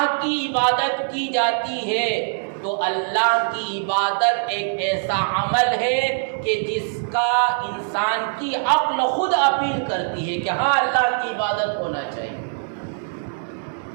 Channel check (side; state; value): left; silent; digital silence